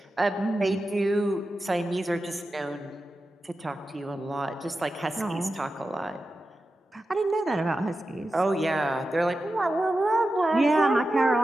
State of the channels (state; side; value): normal; both; correlation 0.92